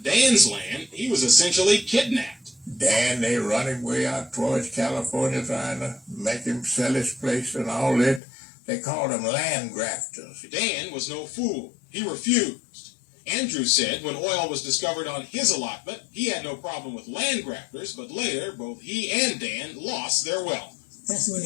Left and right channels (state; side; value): drops out; right; at 8.2 s